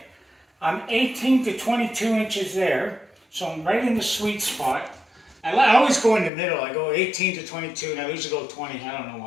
I'm 18 to 22 inches there, so I'm right in the sweet spot. I always go in the middle. I go 18 to 22, and I usually go 20. I don't know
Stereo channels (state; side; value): drops out; right; at 6.3 s